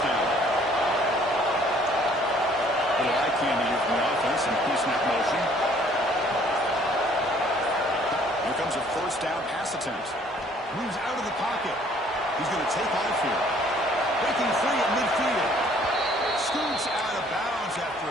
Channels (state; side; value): normal; both; correlation 0.59